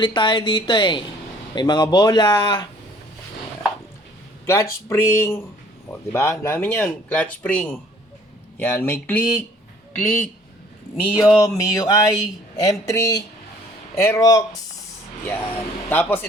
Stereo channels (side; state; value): both; normal; correlation 0.57